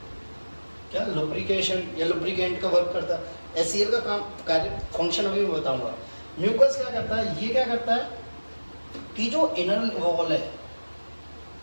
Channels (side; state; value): both; inverted; correlation -1.00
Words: क्या, लुब्रिकेशन या लुब्रिकेंट का वर्क करता है। एचसीएल का काम, कार्य, फंक्शन अभी मैं बताऊंगा। म्यूकस क्या करता है, ये क्या करता है कि जो इनर वॉल है,